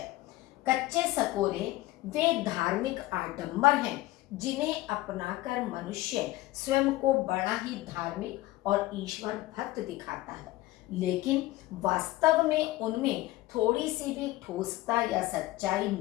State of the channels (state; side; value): quieter; right; 17.7 dB